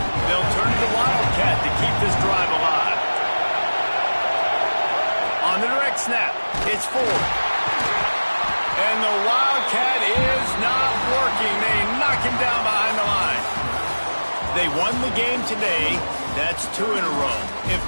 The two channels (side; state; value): both; inverted; correlation -1.00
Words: They'll turn to the Wildcat to keep this drive alive. On the direct snap, it's Ford. And the Wildcat is not working. They knock him down behind the line. They won the game today. That's 2 in a row. If